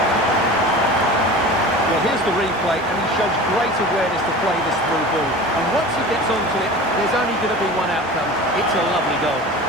Well, here's the replay, and he shows great awareness to play this through ball. And once he gets onto it, there's only going to be one outcome. It's a lovely goal.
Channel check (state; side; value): normal; both; correlation 0.36